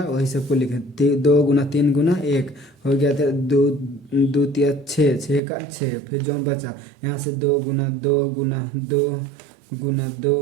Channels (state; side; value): drops out; left; at 5.4 s